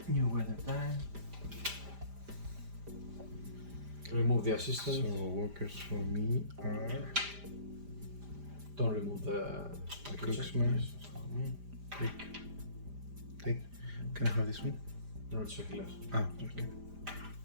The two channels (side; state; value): left; late; 5.0 ms